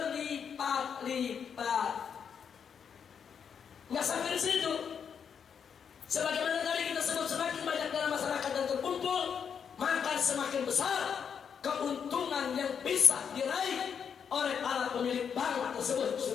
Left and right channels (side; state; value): right; quieter; 7.2 dB